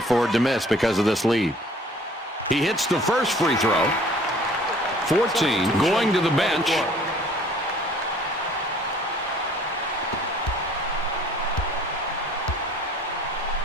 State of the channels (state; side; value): normal; both; correlation 0.53